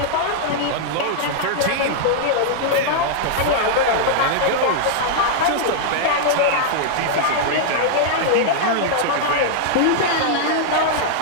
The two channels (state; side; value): different; both; correlation -0.01